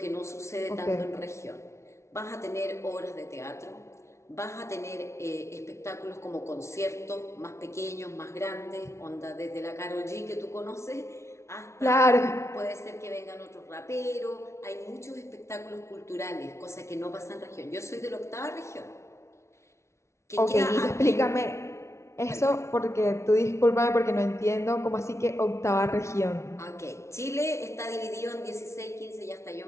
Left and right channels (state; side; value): late; right; 0.13 ms